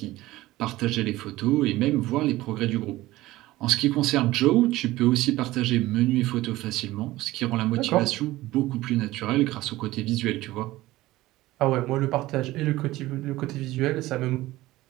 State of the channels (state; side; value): quieter; left; 17.4 dB